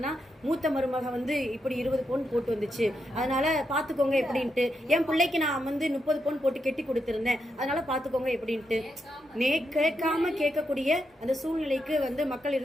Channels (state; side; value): normal; both; correlation 0.83